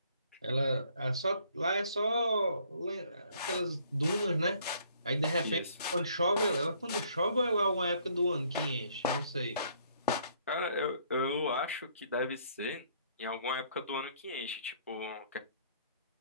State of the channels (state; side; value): inverted; both; correlation -0.64